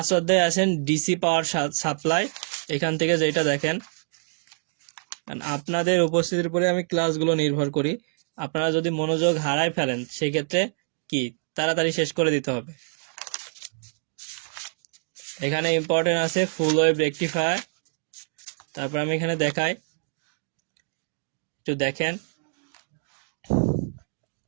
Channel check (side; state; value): left; silent; digital silence